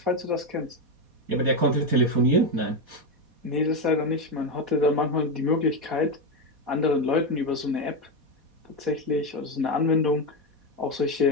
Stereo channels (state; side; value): late; left; 4.2 ms